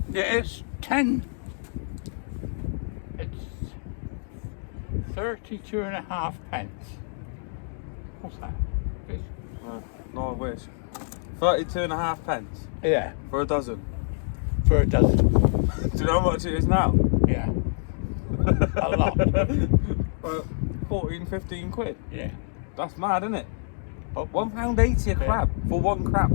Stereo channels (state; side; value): silent; right; digital silence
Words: it's 10. It's 32.5 pence. What's that? No, I wish. 32.5 pence Yeah, for a dozen. for a dozen. Do you know how much it is now? Yeah, a lot. 14, 15 quid. Yeah. That's mad, isn't it? But £1.80 a crab for 1 crab.